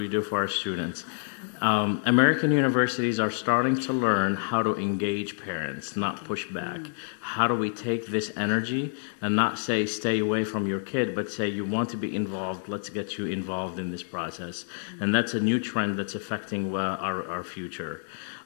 do for our students. American universities are starting to learn how to engage parents, not push back. How do we take this energy and not say stay away from your kid, but say you want to be involved, let's get you involved in this process. And that's a new trend that's affecting our future.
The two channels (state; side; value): silent; right; digital silence